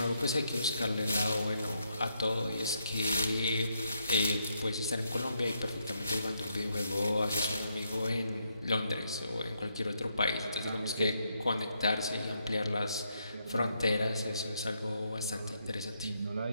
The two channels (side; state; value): both; inverted; correlation -0.78